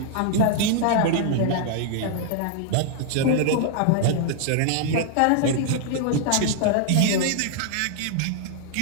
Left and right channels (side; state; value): both; different; correlation -0.01